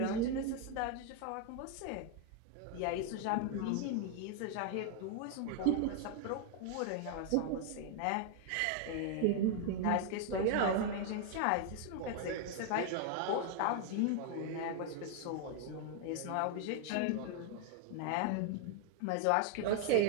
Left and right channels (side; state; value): both; different; correlation 0.00